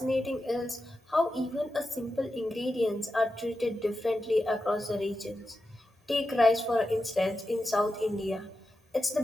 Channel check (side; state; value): both; normal; correlation 0.90